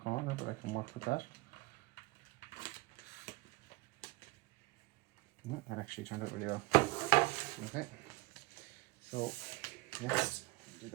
but I can work with that. No, that actually turned out really well. Okay, so let's do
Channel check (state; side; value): quieter; left; 22.7 dB